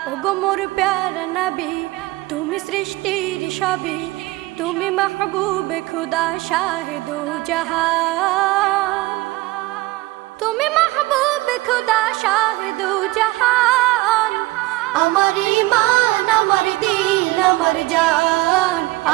ওগো মোর প্যারা নবী, তুমি সৃষ্টির সবই, তুমি মাহবুবে খুদা শাহে দো জাহান, তুমি মাহবুবে খুদা শাহে দো জাহান। আমার ঈমান আমার দিল আমার জান,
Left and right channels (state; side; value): quieter; left; 20.0 dB